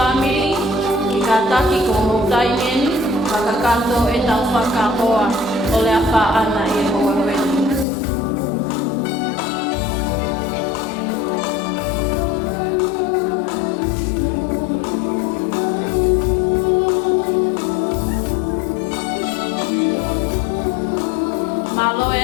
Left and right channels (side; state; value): right; drops out; at 7.9 s